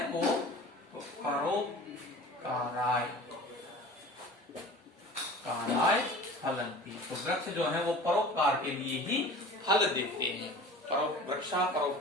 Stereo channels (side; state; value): both; normal; correlation 0.41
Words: वो परोपकाराय फलन्ति, तो वृक्ष जो है वो परोपकार के लिए ही फल देते हैं। वृक्षा